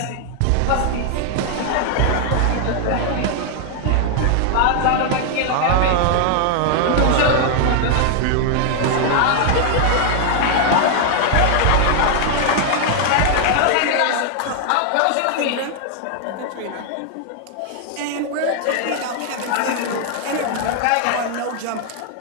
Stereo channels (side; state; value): both; different; correlation 0.00